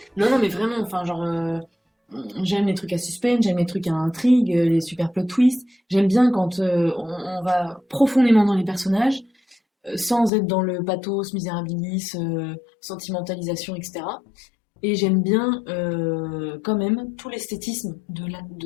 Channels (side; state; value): right; drops out; at 10.3 s